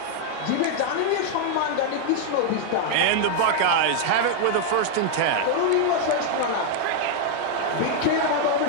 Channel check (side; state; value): both; different; correlation 0.00